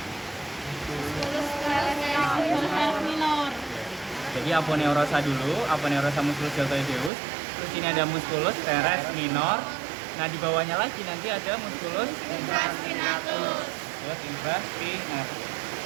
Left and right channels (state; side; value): drops out; left; at 7.1 s